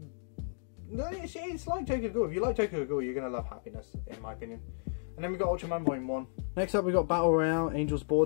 no, it's like Tokyo Ghoul. If you like Tokyo Ghoul, you're going to love Happiness, in my opinion. And then we got Ultraman Volume 1. Next up we got Battle Royale, Angel's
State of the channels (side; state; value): right; silent; digital silence